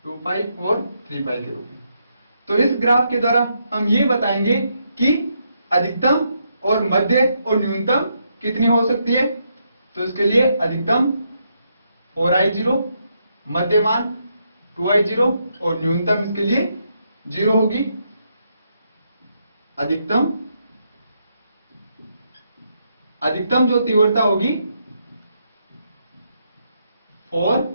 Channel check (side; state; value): both; inverted; correlation -0.78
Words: 2 पाई और 3 पाई के रूप में। तो इस ग्राफ के द्वारा हम ये बताएंगे कि अधिकतम और मध्य और न्यूनतम कितनी हो सकती है। तो इसके लिए अधिकतम 4i0, मध्य मान 2i0 और न्यूनतम इसके लिए 0 होगी। अधिकतम जो तीव्रता होगी